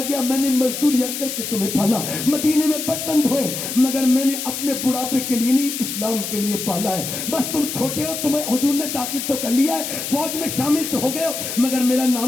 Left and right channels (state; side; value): noise; left; hiss, 5 dB below the sound